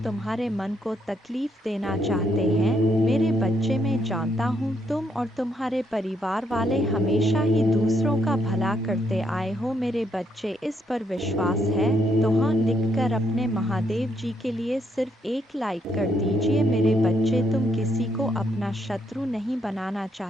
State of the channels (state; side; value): normal; both; correlation 0.75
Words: तुम्हारे मन को तकलीफ देना चाहते हैं। मेरे बच्चे, मैं जानता हूँ तुम और तुम्हारे परिवार वाले हमेशा ही दूसरों का भला करते आए हो। मेरे बच्चे, इस पर विश्वास है तो हाँ लिखकर अपने महादेव जी के लिए सिर्फ एक लाइक कर दीजिए। मेरे बच्चे, तुम किसी को अपना शत्रु नहीं बनाना